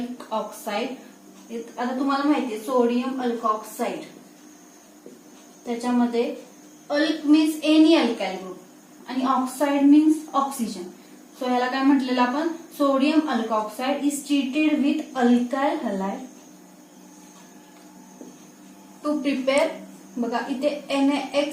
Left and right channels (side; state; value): both; identical; correlation 1.00